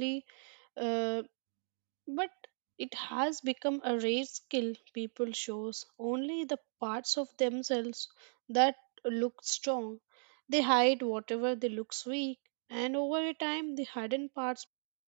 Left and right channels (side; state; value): left; silent; digital silence